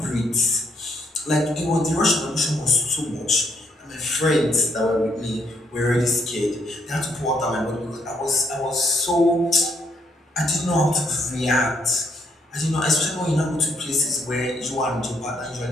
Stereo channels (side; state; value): both; normal; correlation 0.73